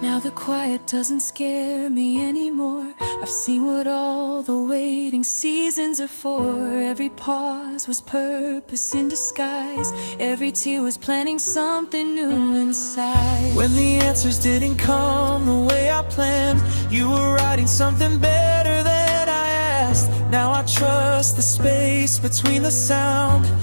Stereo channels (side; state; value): both; inverted; correlation -1.00